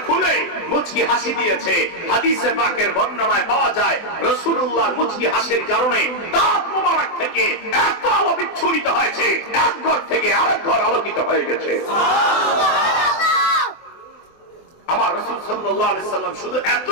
খুলে মুচকি হাসি দিয়েছে। হাদিসে পাকের বর্ণনায় পাওয়া যায়, রাসূলুল্লাহর মুচকি হাসির কারণে দাঁত মোবারক থেকে এত আলো বিচ্ছুরিত হয়েছে, এক ঘর থেকে আরেক ঘর আলোকিত হয়ে গেছে। আমার রাসূল সাল্লাল্লাহু আলাইহি সাল্লাম শুধু এত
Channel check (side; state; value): right; late; 24 ms